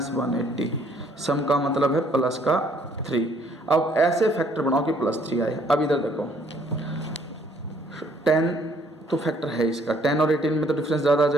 180, सम का मतलब है प्लस का 3। अब ऐसे फैक्टर बनाओ कि +3 आए। अब इधर देखो 10 तो फैक्टर है इसका, 10 और 18 में तो डिफरेंस ज़्यादा आ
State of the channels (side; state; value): both; normal; correlation 0.63